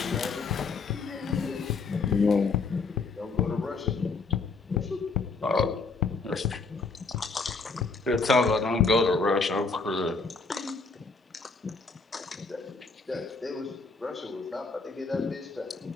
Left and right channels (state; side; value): quieter; right; 4.3 dB